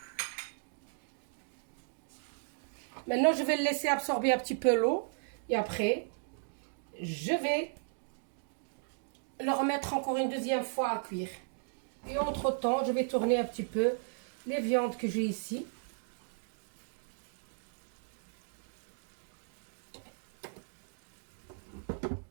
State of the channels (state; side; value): silent; left; digital silence